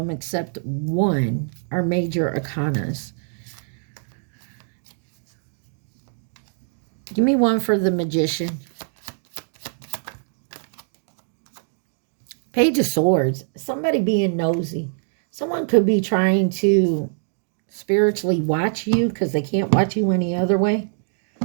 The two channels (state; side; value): silent; left; digital silence